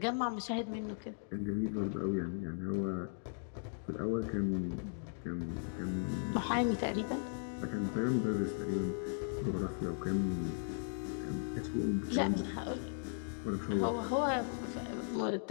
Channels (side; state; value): right; silent; digital silence